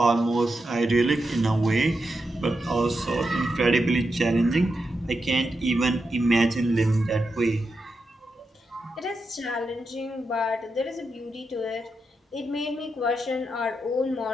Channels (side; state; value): both; normal; correlation 0.86